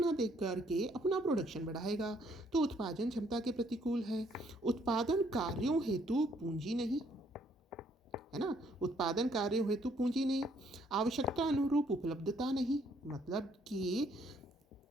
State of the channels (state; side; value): normal; both; correlation 0.67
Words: देख करके अपना प्रोडक्शन बढ़ाएगा। तो उत्पादन क्षमता के प्रतिकूल है। उत्पादन कार्यों हेतु पूंजी नहीं, है ना, उत्पादन कार्यों हेतु पूंजी नहीं। आवश्यकता अनुरूप उपलब्धता नहीं, मतलब कि